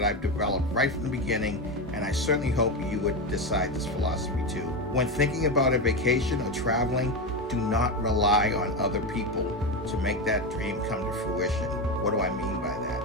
I've developed right from the beginning, and I certainly hope you would decide this philosophy too. When thinking about a vacation or traveling, do not rely on other people to make that dream come to fruition. What do I mean by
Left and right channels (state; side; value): normal; both; correlation 0.15